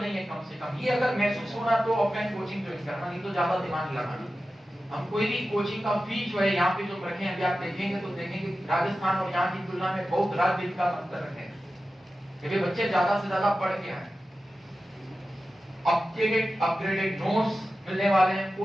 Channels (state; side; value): normal; both; correlation 0.93